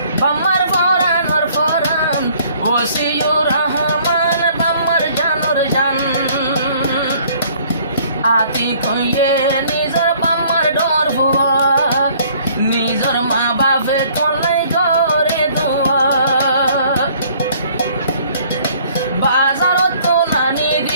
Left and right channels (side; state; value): both; inverted; correlation -0.58